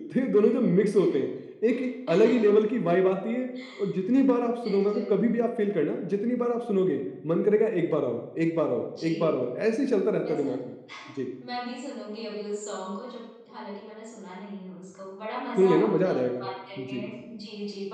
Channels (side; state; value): both; identical; correlation 1.00